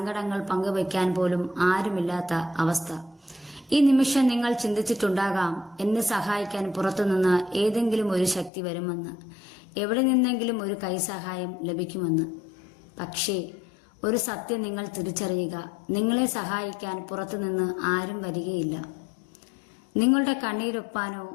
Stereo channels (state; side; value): drops out; right; at 8.5 s